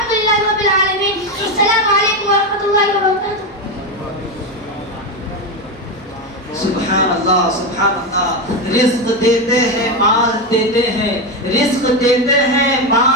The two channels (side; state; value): both; normal; correlation 0.12